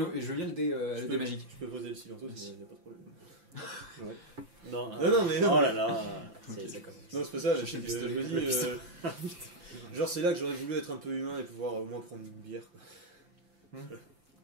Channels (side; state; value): left; late; 5.9 ms